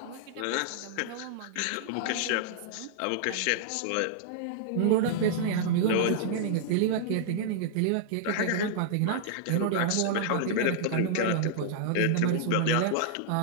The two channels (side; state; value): both; different; correlation -0.01